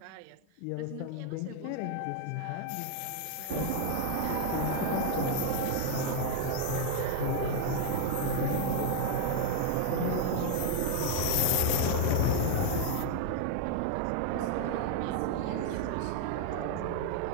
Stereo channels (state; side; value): different; both; correlation 0.00